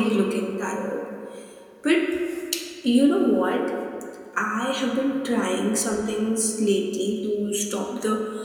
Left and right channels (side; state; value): both; identical; correlation 1.00